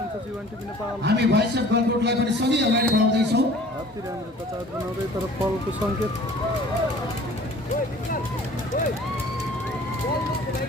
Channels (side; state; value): both; normal; correlation 0.49